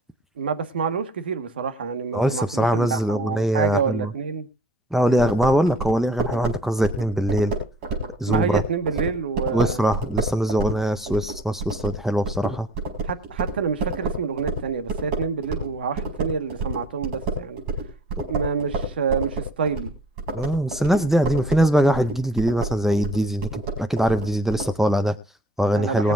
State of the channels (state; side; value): normal; both; correlation 0.53